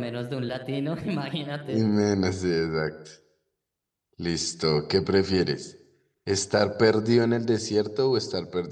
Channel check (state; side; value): identical; both; correlation 1.00